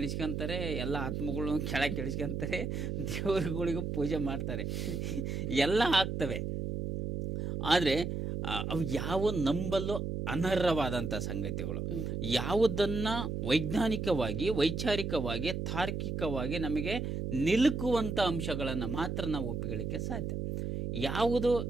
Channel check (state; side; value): noise; right; hum, 3 dB below the sound